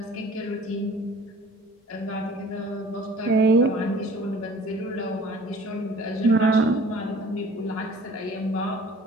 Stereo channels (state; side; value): normal; both; correlation 0.50